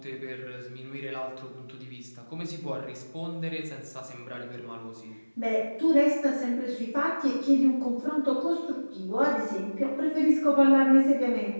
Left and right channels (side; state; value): both; inverted; correlation -1.00